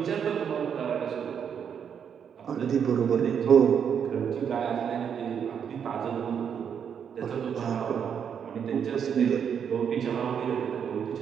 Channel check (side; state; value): left; quieter; 7.7 dB